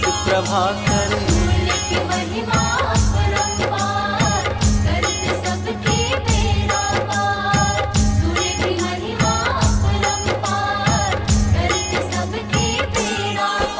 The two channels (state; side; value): identical; both; correlation 1.00